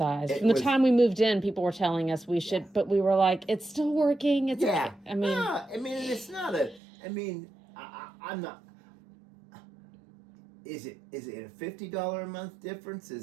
From the time we moved in, people were telling us we should, but we were like, it's still working. It's yeah. I mean, it's not a. I'm not. Is it a $50 a month difference?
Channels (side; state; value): left; drops out; at 6.8 s